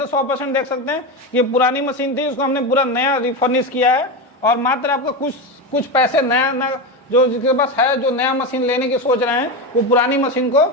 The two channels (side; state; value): both; normal; correlation 0.17